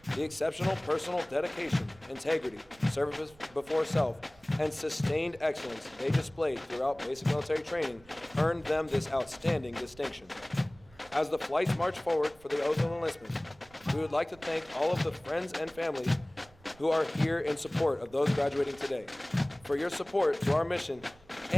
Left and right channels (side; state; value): right; noise; rumble, 26 dB below the sound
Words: The exceptional personal dedication, integrity, service before self, and sustained excellence they displayed throughout basic military training earned them this outstanding distinction. As the flights march forward for the oath of enlistment, we would like to thank all of the friends and families who are here in support of those graduating today for your support to our mission